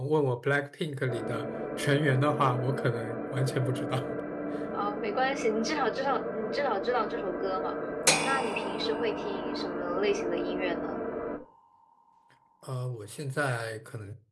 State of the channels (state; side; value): identical; both; correlation 1.00